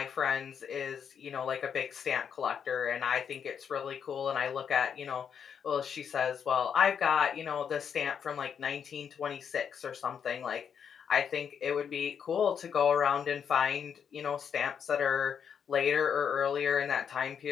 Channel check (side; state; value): right; quieter; 7.5 dB